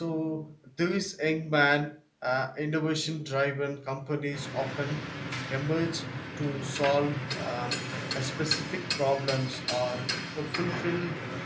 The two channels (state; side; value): identical; both; correlation 1.00